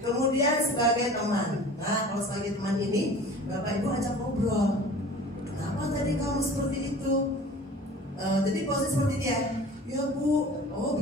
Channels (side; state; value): both; normal; correlation 0.43